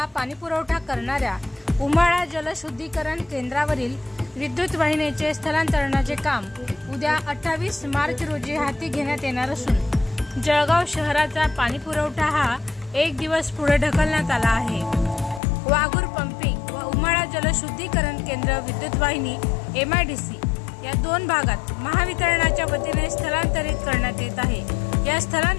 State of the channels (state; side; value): drops out; right; at 15.4 s